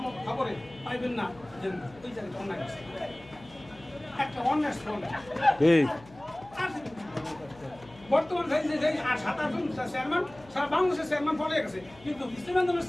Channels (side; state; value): left; noise; hum, 23 dB below the sound